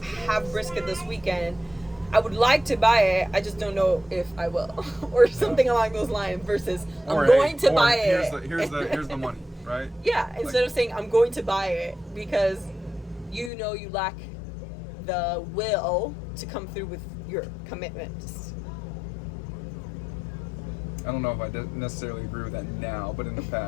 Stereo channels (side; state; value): right; drops out; at 13.5 s